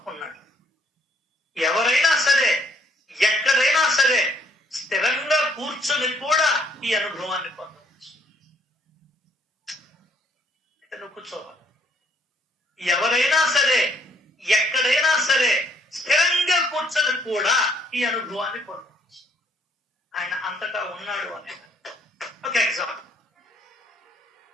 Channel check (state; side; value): normal; both; correlation 0.66